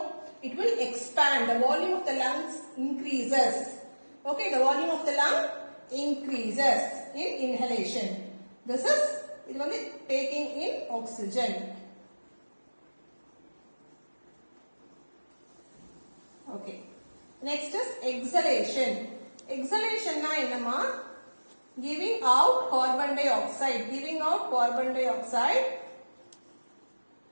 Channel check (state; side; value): inverted; both; correlation -1.00